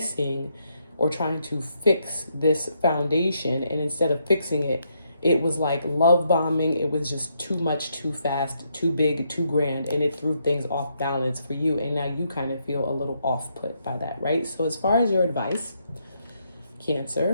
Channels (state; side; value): inverted; both; correlation -0.77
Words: or trying to fix this foundation. And instead of fixing it, it was like love bombing. It was just too much, too fast, too big, too grand. And it threw things off balance for you. And now you kind of feel a little off put by that, right? So as far as your advice,